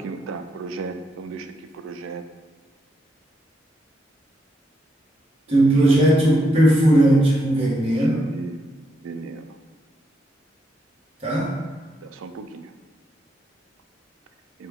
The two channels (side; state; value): both; normal; correlation 0.80